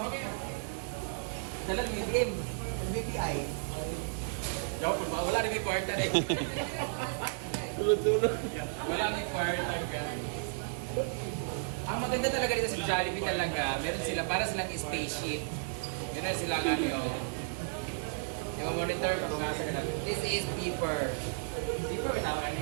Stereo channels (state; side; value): silent; left; digital silence